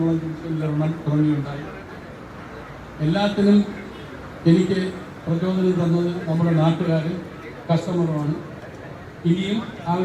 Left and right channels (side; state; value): both; identical; correlation 1.00